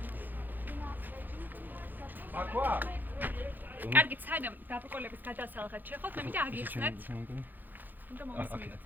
აკვა კარგი, სანამ დაბრკოლების გადასალხად შეხოთ, მე მინდა აგიხსნათ. უნდა მოვისმინოთ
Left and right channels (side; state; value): left; late; 0.087 ms